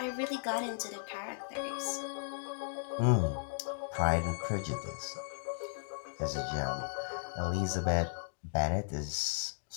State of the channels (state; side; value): silent; right; digital silence